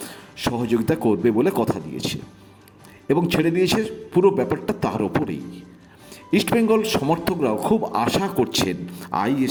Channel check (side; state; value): both; identical; correlation 1.00